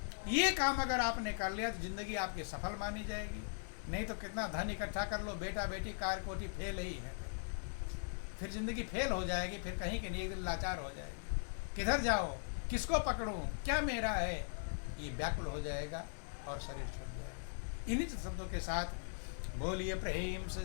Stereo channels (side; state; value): right; silent; digital silence